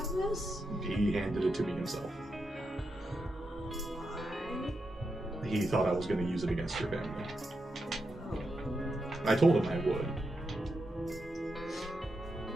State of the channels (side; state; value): both; normal; correlation 0.86